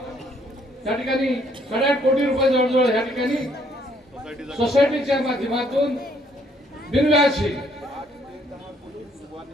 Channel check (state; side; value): normal; both; correlation 0.67